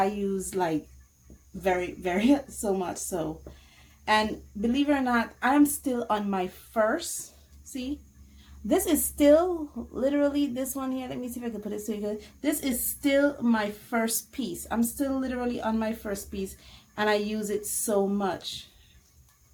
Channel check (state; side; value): identical; both; correlation 1.00